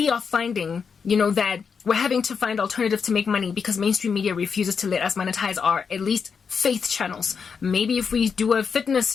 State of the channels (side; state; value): right; quieter; 6.0 dB